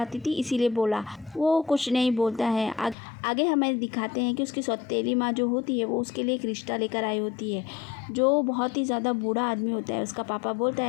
थी इसीलिए बोला। वो कुछ नहीं बोलता है। आगे हमें दिखाते हैं कि उसकी सौतेली माँ जो होती है वो उसके लिए एक रिश्ता लेकर आई होती है, जो बहुत ही ज़्यादा बूढ़ा आदमी होता है। उसका पापा बोलता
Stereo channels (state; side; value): drops out; right; at 3.0 s